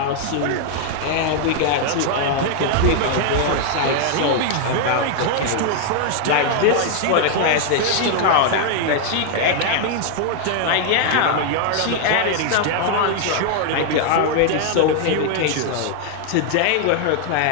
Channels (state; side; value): different; both; correlation 0.00